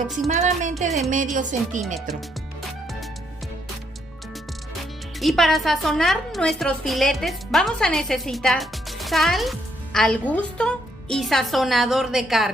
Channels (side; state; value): both; normal; correlation 0.73